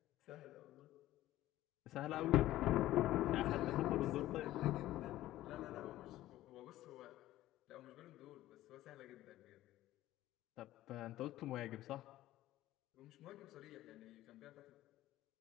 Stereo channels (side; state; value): right; quieter; 15.0 dB